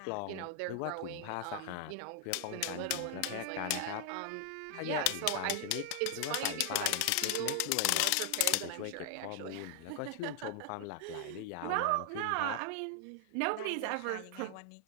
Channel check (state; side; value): different; both; correlation 0.00